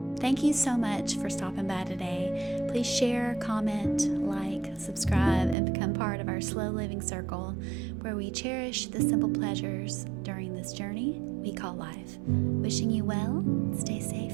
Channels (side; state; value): left; drops out; at 5.6 s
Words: Thank you so much for stopping by today. Please share, comment, like, subscribe, and become part of our slow living circle where we cherish the simple pleasures during this journey we call life. Wishing you well. Stay